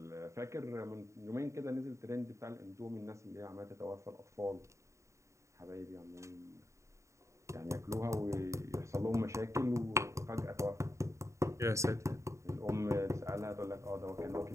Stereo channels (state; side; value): late; left; 0.14 ms